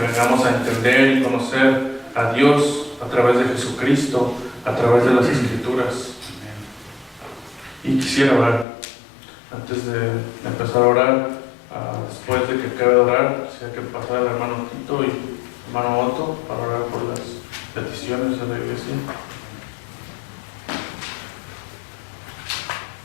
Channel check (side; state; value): right; drops out; at 8.7 s